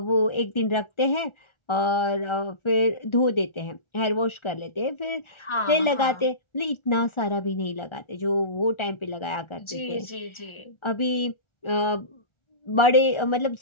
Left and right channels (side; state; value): right; late; 1.4 ms